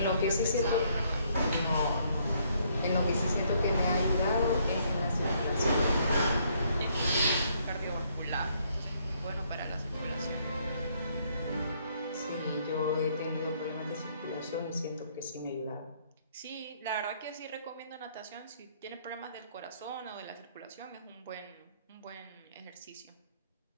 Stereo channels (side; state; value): both; inverted; correlation -0.69